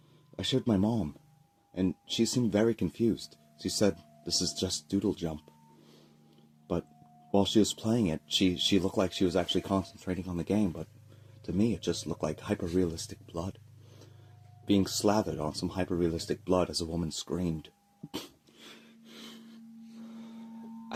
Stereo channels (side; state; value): both; identical; correlation 1.00